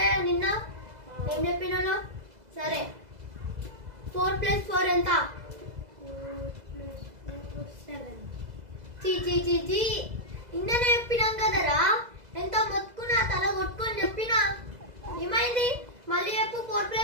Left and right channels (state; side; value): late; left; 2.0 ms